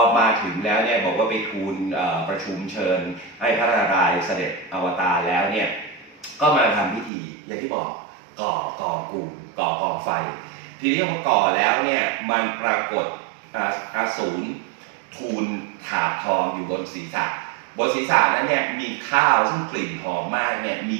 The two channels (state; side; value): drops out; left; at 7.1 s